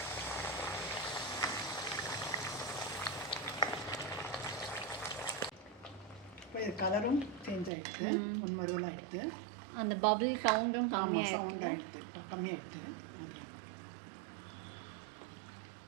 இப்போ இது கலரும் சேஞ்ச் ஆகிடுது, முன்மருவல் ஆகிடுது. அந்த பபிள் சவுண்டும் கம்மியாக சவுண்ட் ஆகிடுது, கம்மியாகிடுது.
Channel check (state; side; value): drops out; left; at 7.7 s